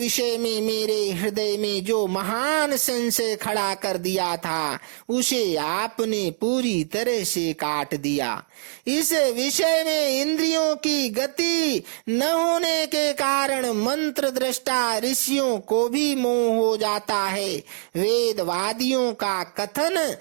में मेरे हृदय में जो महान संशय खड़ा कर दिया था उसे आपने पूरी तरह से काट दिया। इस विषय में इंद्रियों की गति न होने के कारण मंत्र दृष्टा ऋषियों को भी मोह हो जाता है। वेदवादियों का कथन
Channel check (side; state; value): left; silent; 61 dB below the other